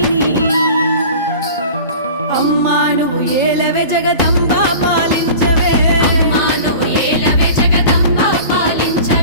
అమ్మా నువ్వు ఏలవే జగదంబా పాలించవే అమ్మా నువ్వు ఏలవే జగదంబా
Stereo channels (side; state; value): both; inverted; correlation -0.39